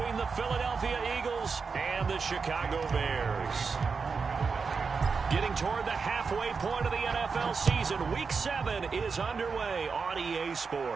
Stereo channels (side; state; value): left; quieter; 5.1 dB